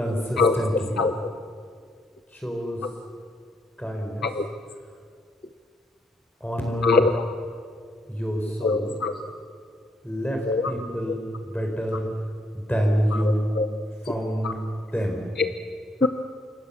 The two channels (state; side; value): normal; both; correlation 0.72